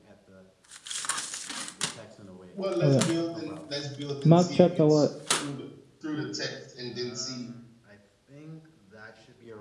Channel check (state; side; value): identical; both; correlation 1.00